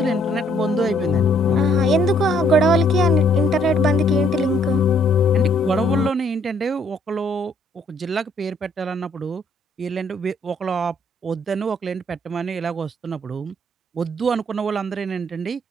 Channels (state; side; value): normal; both; correlation 0.66